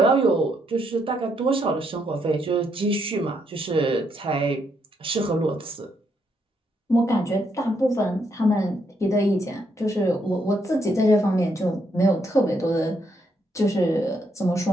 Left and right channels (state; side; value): normal; both; correlation 0.76